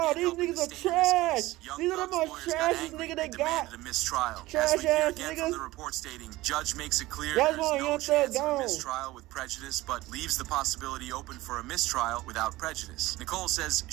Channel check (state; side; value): quieter; left; 18.4 dB